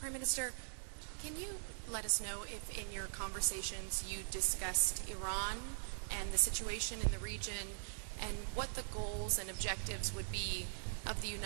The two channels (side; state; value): left; silent; digital silence